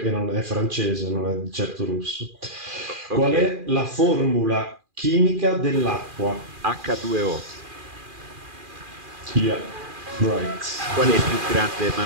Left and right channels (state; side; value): late; left; 2.4 ms